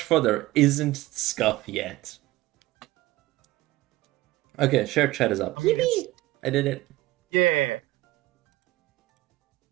for there isn't scuff yet. Okay, share chat is up. I mean, it's... Yippee! I did it. Yeah.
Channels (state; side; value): quieter; left; 17.5 dB